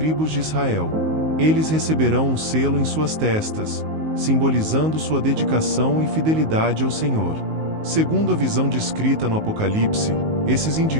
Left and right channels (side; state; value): left; late; 19 ms